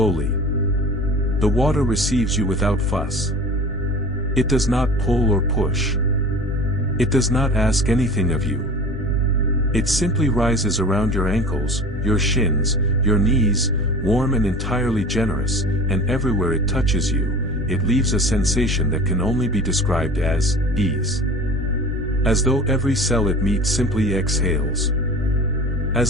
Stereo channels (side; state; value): both; normal; correlation 0.39